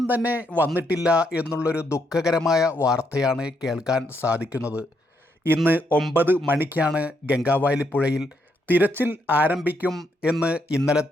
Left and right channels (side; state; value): both; normal; correlation 0.76